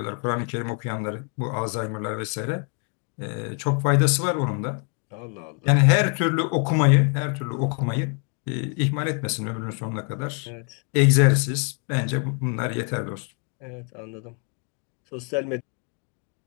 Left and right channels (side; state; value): right; quieter; 37.6 dB